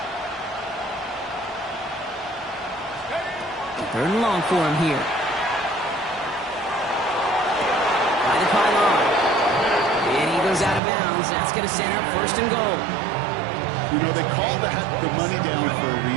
Third and long for him here. By the pylon. And he goes out of bounds. That's going to set up first and goal. You know, they call that the money down for a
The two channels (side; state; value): left; drops out; at 10.8 s